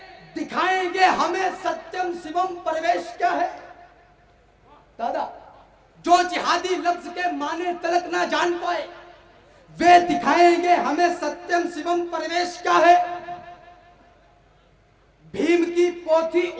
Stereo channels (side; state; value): both; identical; correlation 1.00